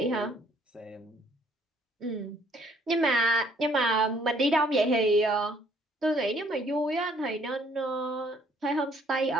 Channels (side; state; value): both; normal; correlation 0.63